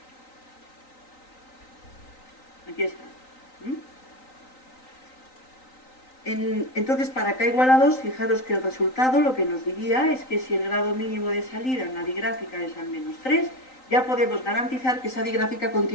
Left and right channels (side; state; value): right; late; 3.9 ms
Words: 2. Aquí está. Entonces, para K igual a 2, fijaros que el resultado lo que nos diría es que si el grado mínimo de salida en la digráfica es al menos 3, ya podemos garantizar que esa digráfica